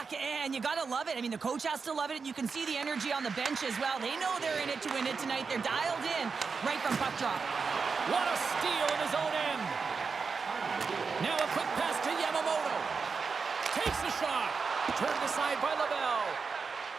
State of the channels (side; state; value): left; quieter; 5.1 dB